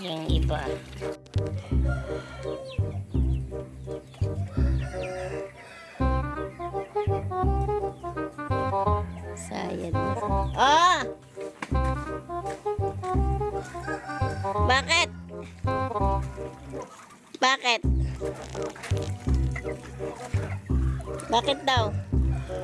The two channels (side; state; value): both; identical; correlation 1.00